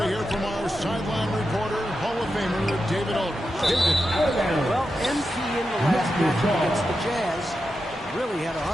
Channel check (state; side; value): normal; both; correlation 0.89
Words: hear from our sideline reporter, Hall of Famer David Aldridge. David. Well, MP in the last match against the Jazz really had a